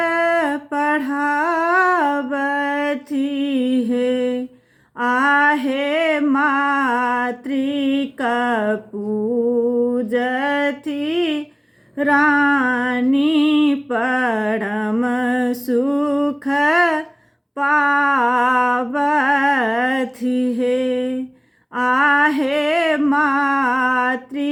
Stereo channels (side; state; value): both; identical; correlation 1.00